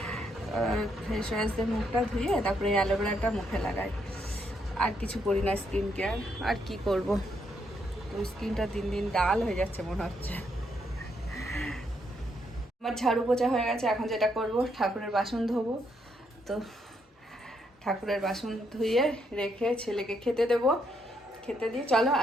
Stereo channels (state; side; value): normal; both; correlation 0.76